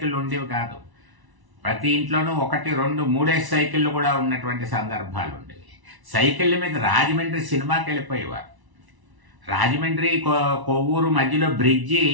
ఉండేవి కాదు. ప్రతి ఇంట్లోనూ 1, 2, 3 సైకిళ్ళు కూడా ఉన్నటువంటి సందర్భాలు ఉండేవి. సైకిళ్ళ మీద రాజమండ్రి సినిమాకి వెళ్ళిపోయేవారు. రాజమండ్రి కొవ్వూరు మధ్యలో బ్రిడ్జి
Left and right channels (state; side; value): late; left; 1.0 ms